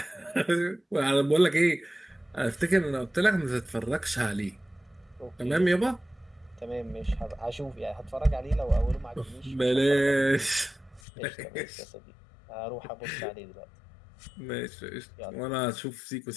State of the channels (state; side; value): drops out; right; at 11.0 s